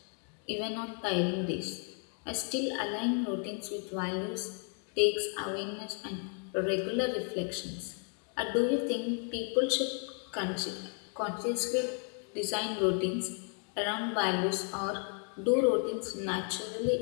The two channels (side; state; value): right; quieter; 39.6 dB